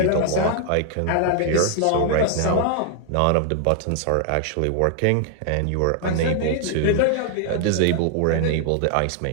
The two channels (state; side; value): different; both; correlation 0.00